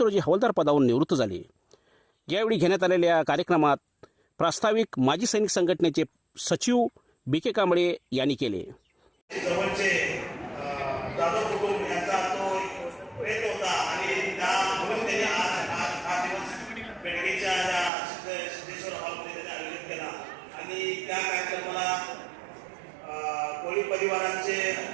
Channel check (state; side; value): drops out; left; at 17.9 s